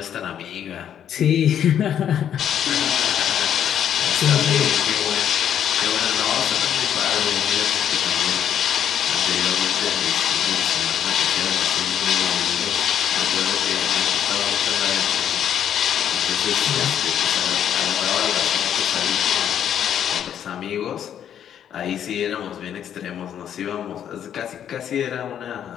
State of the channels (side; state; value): right; quieter; 9.5 dB